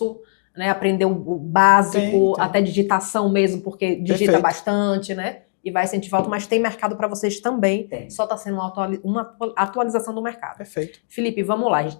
né? Aprender o básico, até digitação mesmo, porque digita bastante, né? E vai sentir falta, mas tem mercado para vocês também. Tem. Só está sendo uma atualização do mercado. Perfeito. Felipe, vamos lá, a gente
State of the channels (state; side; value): silent; right; digital silence